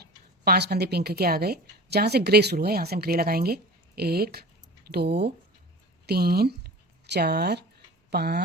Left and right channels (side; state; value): both; normal; correlation 0.37